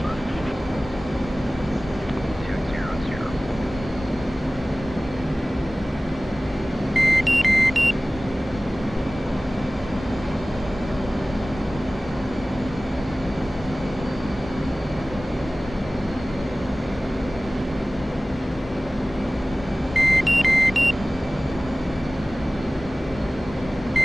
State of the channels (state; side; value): normal; both; correlation 0.98